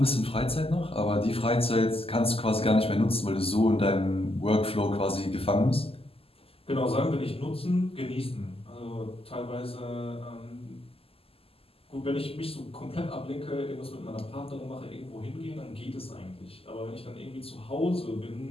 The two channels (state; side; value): late; right; 0.28 ms